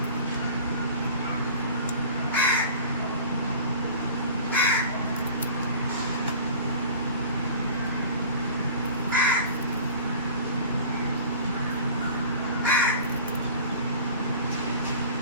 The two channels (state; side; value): inverted; both; correlation -0.41